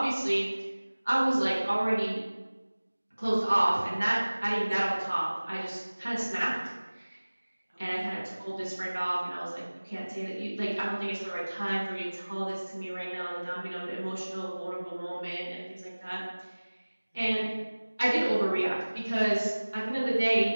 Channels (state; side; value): inverted; both; correlation -1.00